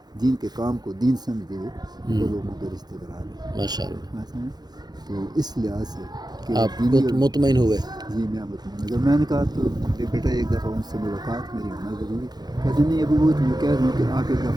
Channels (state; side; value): late; left; 0.20 ms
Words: دین کے کام کو دین سمجھتے ہوئے وہ لوگوں کے رشتے بنا رہے ماشاء اللہ، ہیں۔ تو اس لحاظ سے کہ آپ دینی اور مطمئن ہوئے؟ جی میں مطمئن، اگر میں نے کہا تو بیٹا ایک دفعہ ان سے ملاقات میری ہونا ضروری، کہتے نہیں ابھی وہ تو میں کہہ رہا ہوں کہ آپ ایک